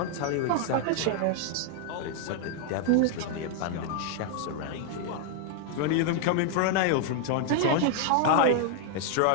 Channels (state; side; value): different; both; correlation 0.00